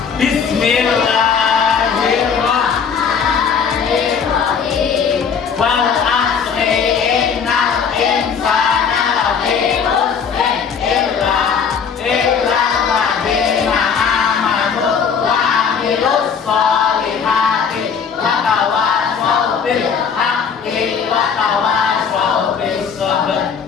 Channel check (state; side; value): quieter; right; 6.5 dB